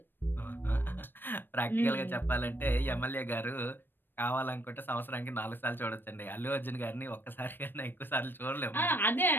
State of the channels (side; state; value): right; late; 0.096 ms